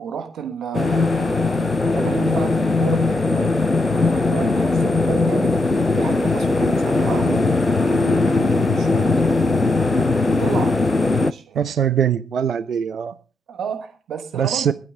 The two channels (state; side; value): normal; both; correlation 0.80